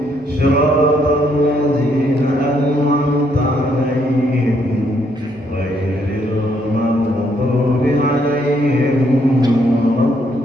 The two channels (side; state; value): both; normal; correlation 0.72